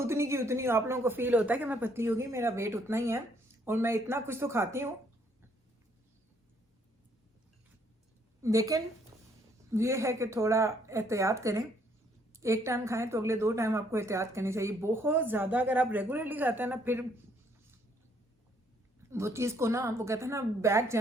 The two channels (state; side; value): normal; both; correlation 0.67